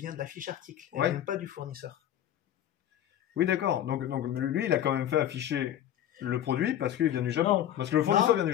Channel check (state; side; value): quieter; right; 11.3 dB